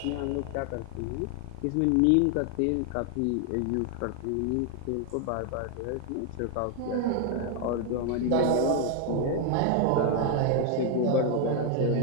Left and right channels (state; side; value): different; both; correlation 0.01